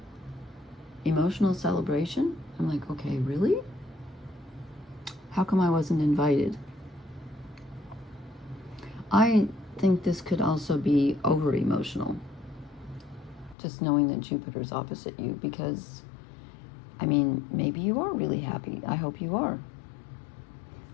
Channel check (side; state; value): right; drops out; at 13.6 s